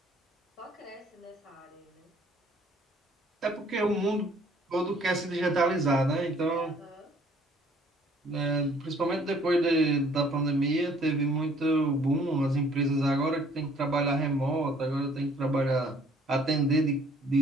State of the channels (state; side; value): normal; both; correlation 0.59